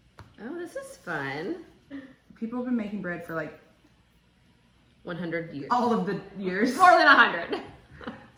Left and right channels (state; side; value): identical; both; correlation 1.00